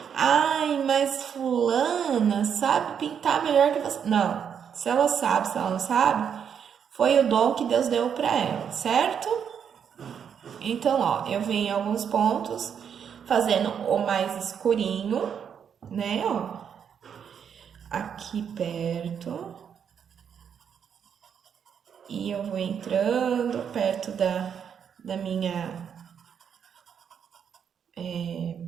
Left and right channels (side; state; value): left; quieter; 7.8 dB